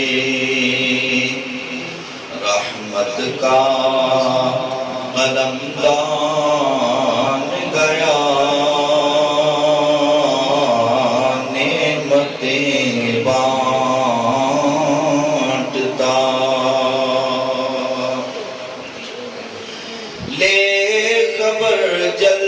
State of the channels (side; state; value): both; identical; correlation 1.00